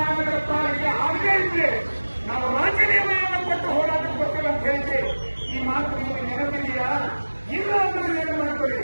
ಪಾಲಿಕೆ ಆಗೇ ಇದ್ರೆ ನಾವು ರಾಜೀನಾಮೆಯನ್ನು ಕೊಟ್ಟು ಹೋರಾಟಕ್ಕೆ ಬರ್ತೀವಿ ಅಂತ ಹೇಳಿದ್ರಿ. ಈ ಮಾತು ನಿಮಗೆ ನೆನಪಿದೆಯಾ? ಇಲ್ಲ ಅಂದ್ರೆ ಏನು ಮಾಡ್ಕೊಳ್ಳಿ.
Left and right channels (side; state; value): both; inverted; correlation -1.00